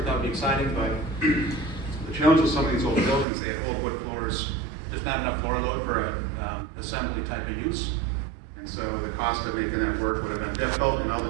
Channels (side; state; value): left; drops out; at 3.2 s